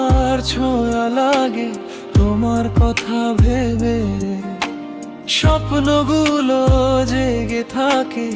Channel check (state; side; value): identical; both; correlation 1.00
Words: ছোঁয়া লাগে তোমার কথা ভেবে, স্বপ্নগুলো জেগে থাকে